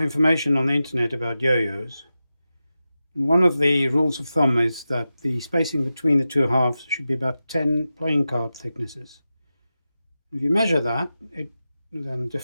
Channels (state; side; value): inverted; both; correlation -0.92